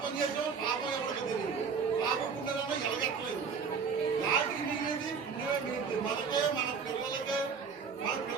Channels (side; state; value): left; quieter; 5.8 dB